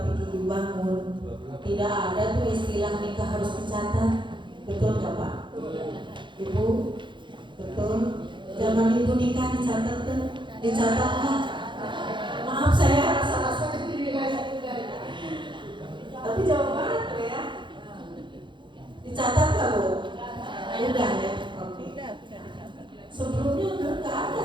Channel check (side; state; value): left; late; 0.23 ms